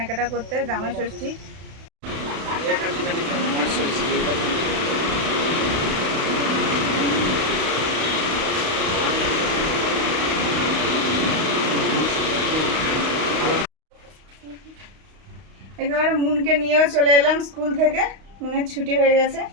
করতে জামাই ষষ্ঠী। একেবারে মুনকে নিয়েও চলে এলাম স্কুল থেকে, মুনের ছুটি হয়ে গেছে।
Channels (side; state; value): left; late; 32 ms